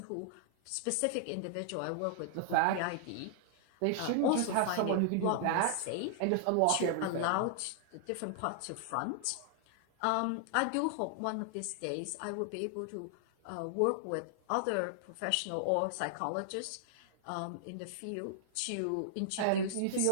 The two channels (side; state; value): both; different; correlation -0.01